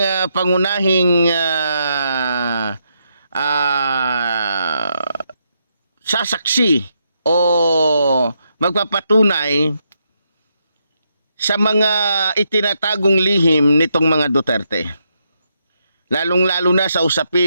pangunahing sasaksi o magpapatunay sa mga itinatagong lihim nitong mga Duterte. Lalong-lalo na sa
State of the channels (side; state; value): both; inverted; correlation -0.80